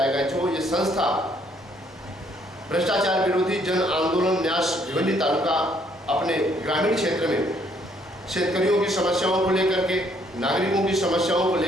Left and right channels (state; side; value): normal; both; correlation 0.67